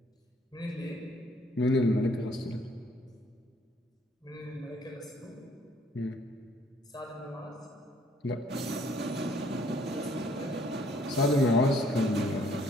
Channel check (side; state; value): both; normal; correlation 0.63